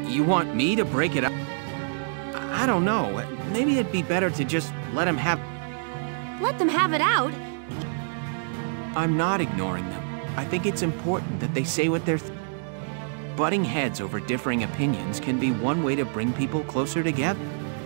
You want me to break it up? I don't know. Maybe it'd be better to just let them have... Let them have it out? I'm not ignoring them. I think it's important that they say what they're... Butting heads over differing opinions can be one way to bring people closer together.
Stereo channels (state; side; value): silent; left; 61 dB below the other